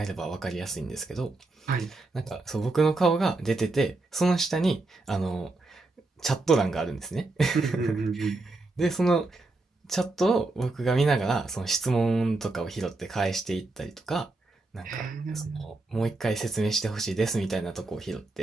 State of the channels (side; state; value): left; quieter; 3.2 dB